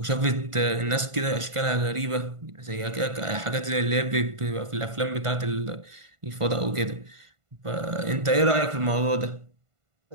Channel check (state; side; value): late; left; 1.5 ms